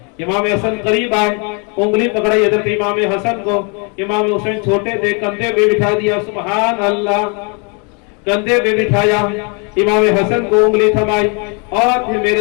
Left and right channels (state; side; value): quieter; right; 35.0 dB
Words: امام حسن قریب آئے، انگلی پکڑائی حضرت امام حسن کو، امام حسین چھوٹے تھے، کندھے پہ بٹھا دیا، سبحان اللہ، کندھے پہ بٹھایا، امام حسن کو انگلی تھمائی اور پھر